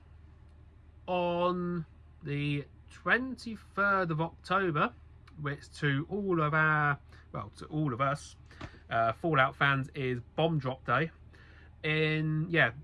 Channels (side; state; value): both; identical; correlation 1.00